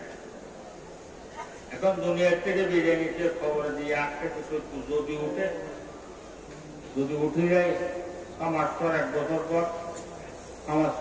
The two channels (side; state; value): both; identical; correlation 1.00